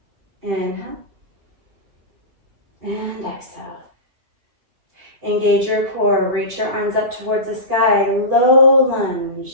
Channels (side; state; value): left; late; 2.7 ms